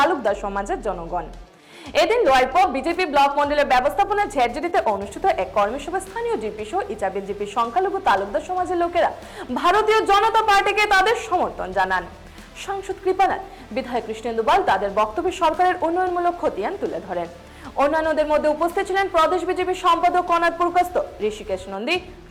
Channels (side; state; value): both; identical; correlation 1.00